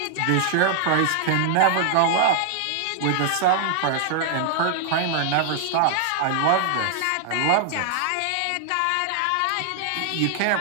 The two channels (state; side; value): different; both; correlation -0.01